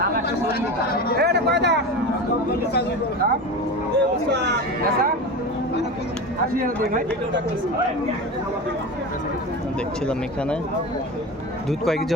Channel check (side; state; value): both; normal; correlation 0.27